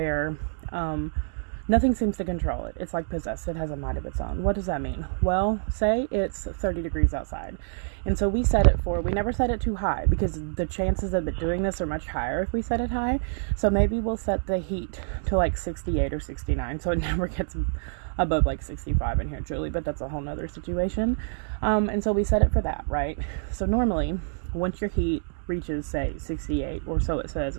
nothing seems to control it. It's like possessed. It has a mind of its own. What does that mean? Well, say it's 30 degrees outside. And so we never set it too high because the chances of it doing this are much higher if we set it high. So maybe we'll set the heat to like 68 or 69 so it never gets above like 65 in here, truly, but that's a whole nother situation. And so we set it for that, right? So normally, once your heat reaches, say, 68, or so it says,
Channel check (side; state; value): left; silent; digital silence